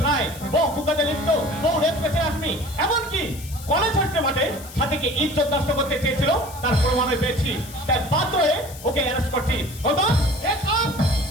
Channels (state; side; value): noise; left; hiss, 16 dB below the sound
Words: ছায় বহু কুকাতে লিপ্ত, বহু রেপ কেসে আসমি, এমনকি কলেজ হস্টের মাঠে সাথীকে ইজ্জত নষ্ট করতে চেয়েছিল, তার প্রমাণও পেয়েছি। তাই বাধ্য হয়ে ওকে অ্যারেস্ট করছি।